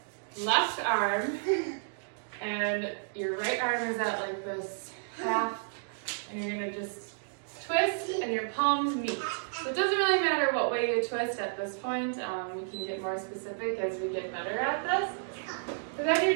left arm, and your right arm is at like this half, and you're going to just twist, and your palms meet. So it doesn't really matter what way you twist at this point. We can get more specific as we get better at this. So then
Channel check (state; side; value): silent; left; digital silence